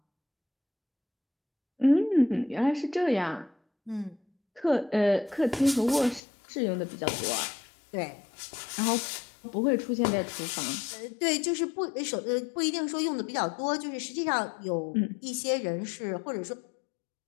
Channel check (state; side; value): drops out; right; at 6.2 s